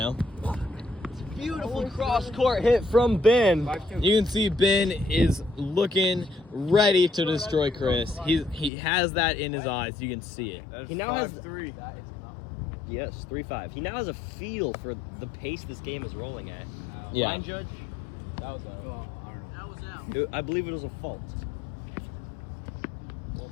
Beautiful cross-court hit from Ben. You can see Ben is looking ready to destroy Chris. He has that in his eyes. You can see it. That's He now has- 5-3. Yes, 3-5. He now has a feel for the pace this game is rolling at. Yeah. Line judge, That was well, I don't know. That was out. I believe it was a fault.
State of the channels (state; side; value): drops out; right; at 8.7 s